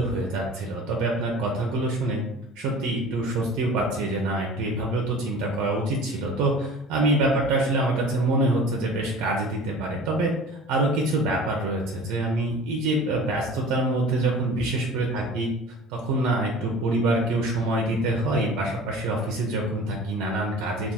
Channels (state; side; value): normal; both; correlation 0.41